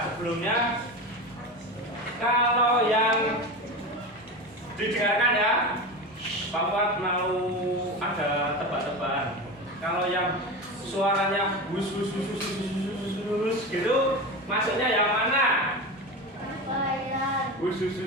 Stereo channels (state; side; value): normal; both; correlation 0.24